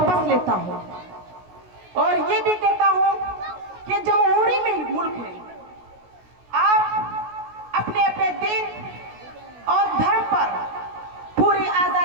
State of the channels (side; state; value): left; late; 16 ms